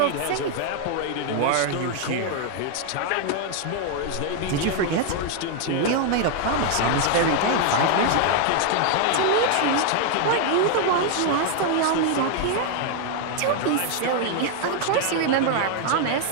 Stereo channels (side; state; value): both; different; correlation 0.00